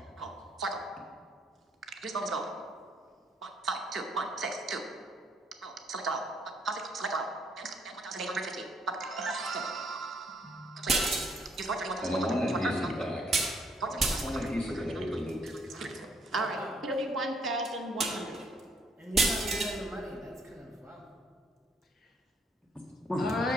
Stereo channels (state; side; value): normal; both; correlation 0.67